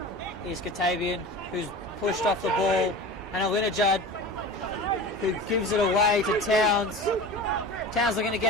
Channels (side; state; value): both; normal; correlation 0.34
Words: Here's Katabian, who's pushed off the ball. And Alinajad, who gives it away to Towns. Towns are going to